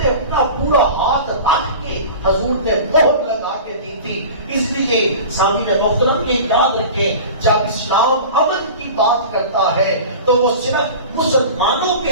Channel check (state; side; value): inverted; both; correlation -0.36